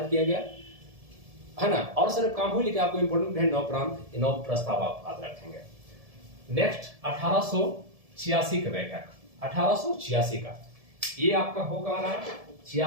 किया गया, है ना। और सिर्फ काम हुई, लेकिन आपको इंपोर्टेंट है 9 प्रस्ताव आप याद रखेंगे। नेक्स्ट 1886 का बैठक, 1886 का, ये आपका हो कहां रहा है?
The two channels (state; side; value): late; left; 1.7 ms